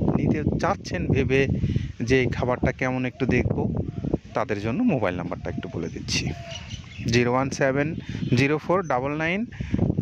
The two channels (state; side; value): identical; both; correlation 1.00